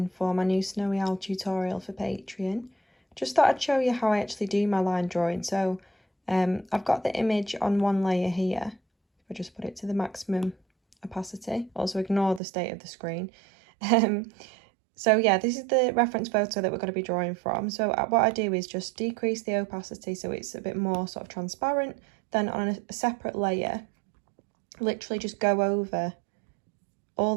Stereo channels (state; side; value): drops out; left; at 12.4 s